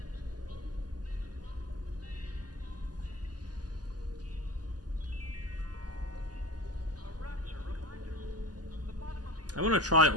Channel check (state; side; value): late; left; 0.68 ms